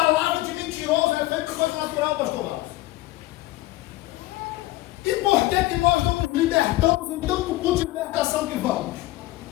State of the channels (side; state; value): right; quieter; 17.8 dB